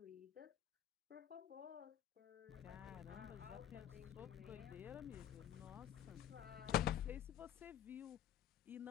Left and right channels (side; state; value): right; quieter; 10.8 dB